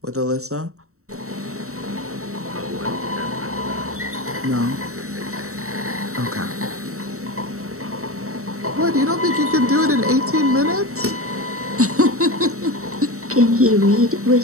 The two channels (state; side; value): late; left; 0.64 ms